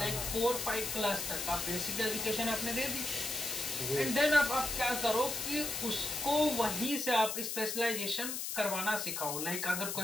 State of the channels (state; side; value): noise; left; hiss, 3 dB below the sound